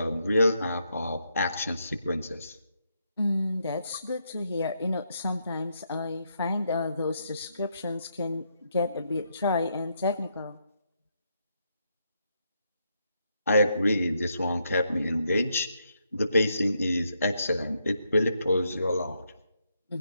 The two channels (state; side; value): inverted; both; correlation -0.79